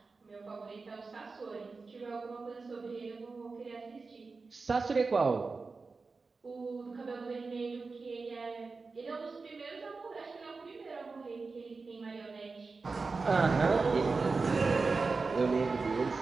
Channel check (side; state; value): left; quieter; 4.2 dB